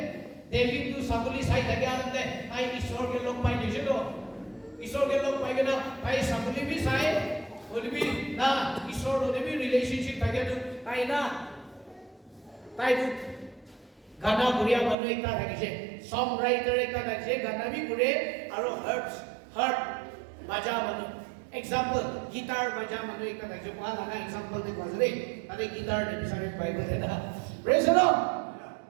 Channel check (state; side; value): drops out; left; at 15.0 s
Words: देवी तू sabuli sai tage आनंद आई ईश्वर के लोग पाई दise do ईश्वर के लोग पाई के ना आई sabuli भी sai Boulby ना ईश्वर ने भी रिलेशनशिप থাকে তো তাই না তাই তো গানা গুড়িয়া মানুহ একটা থাকিছে সং রাইটার একটা থাকিছে গানা বি গুড়ে আৰু হাৰ্ট বাজা মানুহ এক্সাম্পল গিটাৰ বাজা মানুহ একটা থাকিছে কোৱা লাগা এক্সাম্পল দেখো আছে তাতে গিটার ডিভিশনে বাইবেল এটা প্রেজ দ লর্ড